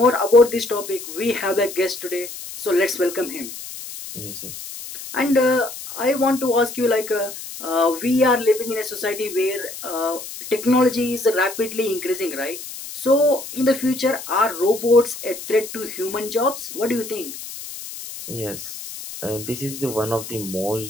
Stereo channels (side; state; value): left; noise; hiss, 11 dB below the sound